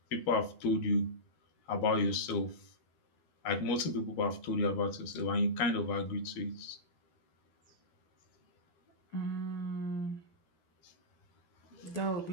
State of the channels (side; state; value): right; late; 12 ms